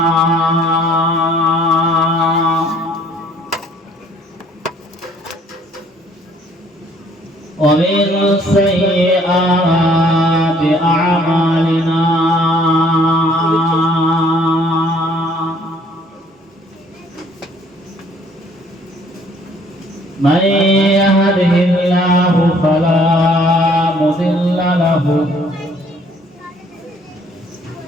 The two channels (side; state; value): both; normal; correlation 0.60